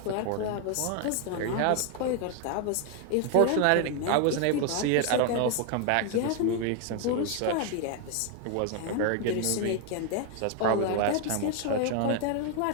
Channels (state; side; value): different; both; correlation 0.01